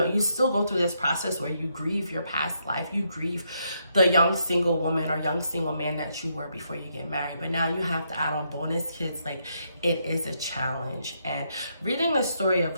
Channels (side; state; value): both; inverted; correlation -0.77